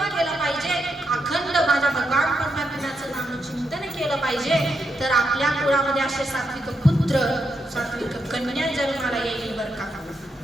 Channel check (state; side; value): normal; both; correlation 0.82